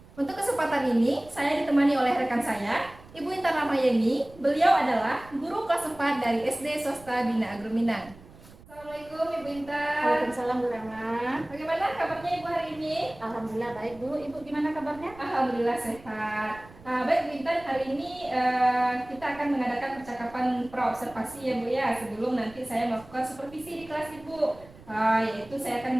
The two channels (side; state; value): right; noise; rumble, 21 dB below the sound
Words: Untuk kesempatan ini, saya ditemani oleh rekan saya, Ibu Intan Ramayeni. Beliau adalah guru kelas 4 dari SD Swasta Bina Agro Minang. Assalamualaikum Ibu Intan. Waalaikumsalam Bu Rama. Bagaimana kabarnya Ibu hari ini? Alhamdulillah baik Bu. Ibu gimana kabarnya? Alhamdulillah sehat. Baik Bu Intan, hari ini kita akan mengadakan percakapan praobservasi ya Bu ya, sebelum nanti saya melakukan supervisi di kelas Ibu. Yaitu saya akan